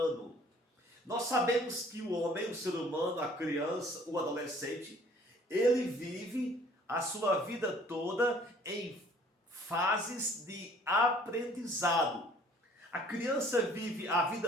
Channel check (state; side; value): normal; both; correlation 0.55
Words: Nós sabemos que o homem, o ser humano, a criança, o adolescente, ele vive a sua vida toda em fases de aprendizado. A criança vive a